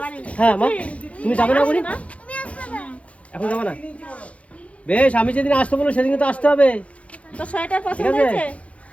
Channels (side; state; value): right; late; 0.064 ms